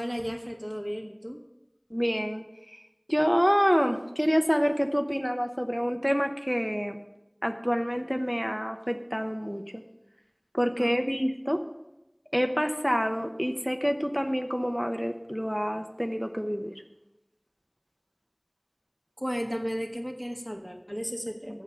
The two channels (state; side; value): identical; both; correlation 1.00